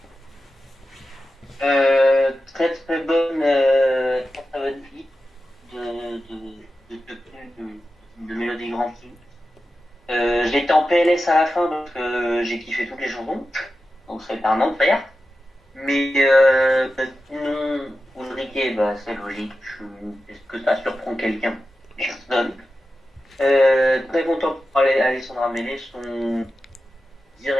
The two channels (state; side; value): normal; both; correlation 0.92